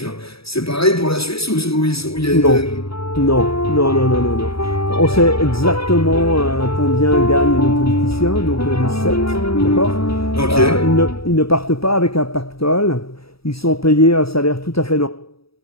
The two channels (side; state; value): right; late; 0.76 ms